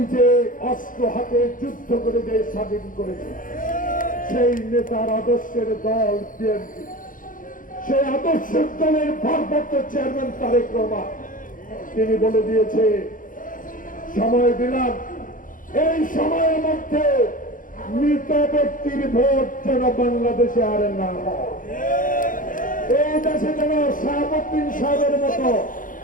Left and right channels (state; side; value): late; right; 0.39 ms